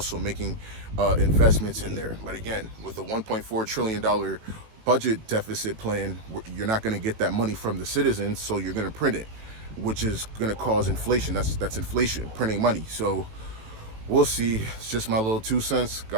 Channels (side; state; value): left; late; 18 ms